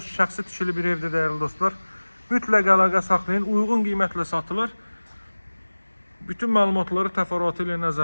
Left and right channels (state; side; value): inverted; both; correlation -1.00